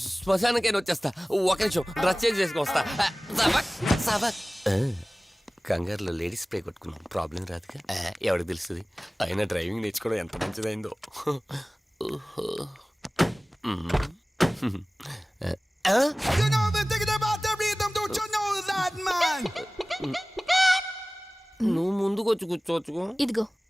శ్మశానకైనా వచ్చేస్తా. ఒక నిమిషం, డ్రెస్ చేంజ్ చేసుకుని వస్తా. కంగారులో లేడీస్ స్ప్రే కొట్టుకున్నాం, ప్రాబ్లం రాదుగా. ఎవరికి తెలుస్తుంది? అయినా డ్రైవింగ్ నేర్చుకోవడం ఎంత మంచిదైందో. నువ్వు ముందుకొచ్చి కూర్చోవచ్చు. ఇదిగో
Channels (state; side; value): normal; both; correlation 0.98